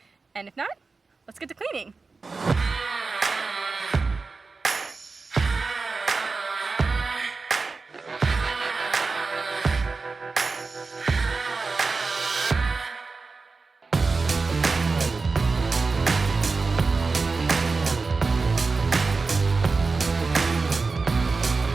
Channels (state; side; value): quieter; left; 4.2 dB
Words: And if not, let's get to cleaning.